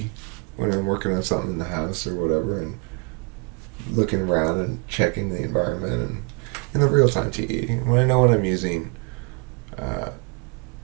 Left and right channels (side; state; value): left; quieter; 31.0 dB